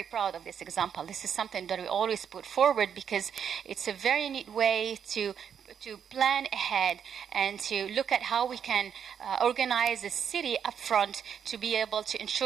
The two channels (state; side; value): quieter; left; 7.9 dB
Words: proud of this example. This is something that we always put forward because it's a very neat way to plan ahead and to look at how we can organize a city up front to be able to